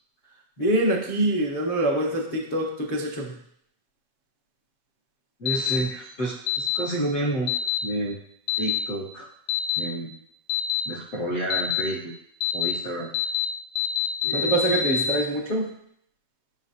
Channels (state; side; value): late; right; 7.4 ms